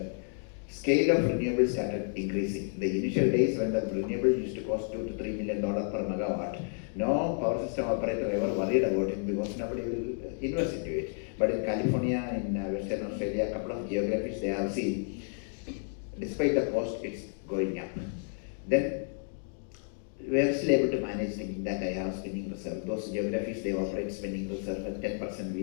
scale of renewables started increasing. The initial days when the renewable used to cost $2 to $3 million per megawatt, no power system operator ever worried about it because nobody will invest into it. But in California, in Western Australia, a couple of geographies they have seen, despite the cost, it's going up. Then we are still able to manage thinking that I have spinning reserve. Those geographies, they operate spinning reserve at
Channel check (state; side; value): silent; right; 57 dB below the other